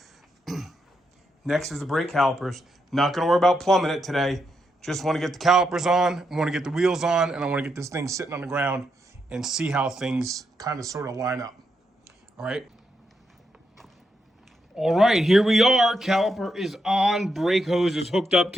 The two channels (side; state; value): both; normal; correlation 0.82